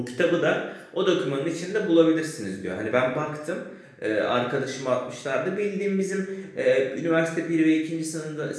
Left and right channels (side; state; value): both; identical; correlation 1.00